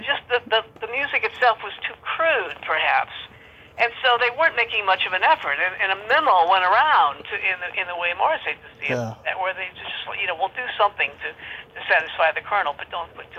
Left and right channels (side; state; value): both; identical; correlation 1.00